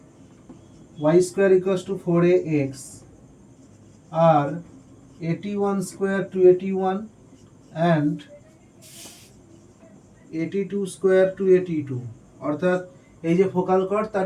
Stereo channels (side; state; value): both; identical; correlation 1.00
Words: y square equals to 4ax are 81 square 281 and 82 square 282, অর্থাৎ এই যে ফোকাল কর্ড